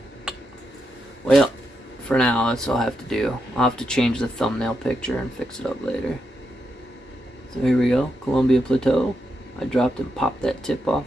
Well, for now, that's all I have to do. I'll have to change the thumbnail picture and fix it up later. So here we go, Colombia Plateau. I dropped and popped that tip off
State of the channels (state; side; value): normal; both; correlation 0.83